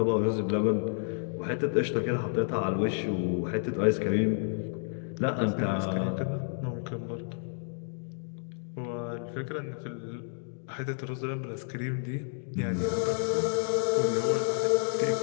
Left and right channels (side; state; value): right; silent; 58 dB below the other